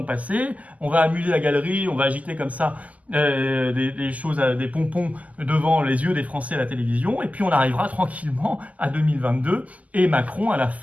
passer, on va amuser la galerie, on va agiter comme ça des choses, des pompons devant les yeux des Français à la télévision, et puis on arrivera tranquillement à 2022, et Macron, à la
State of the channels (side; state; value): left; late; 0.074 ms